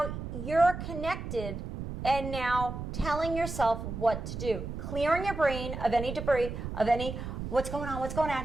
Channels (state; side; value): noise; right; rumble, 6 dB below the sound